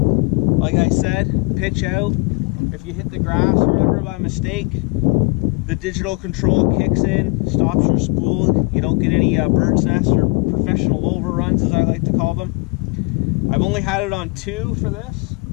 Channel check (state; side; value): quieter; right; 29.1 dB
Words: Like I said, pitch out. If you hit the grass or whatever by mistake, the digital control kicks in, stops your spool. You don't get any bird's nest or professional overruns, as I like to call them. I've only had it on 2 for this.